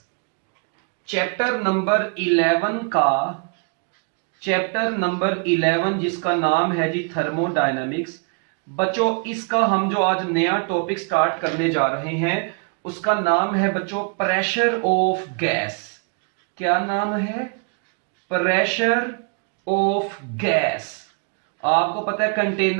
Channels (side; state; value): left; quieter; 37.8 dB